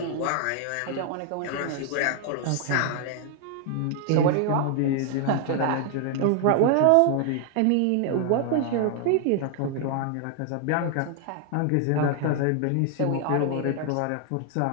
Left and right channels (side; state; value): both; different; correlation 0.00